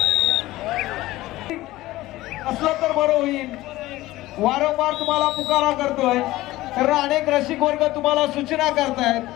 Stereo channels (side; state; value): right; quieter; 17.4 dB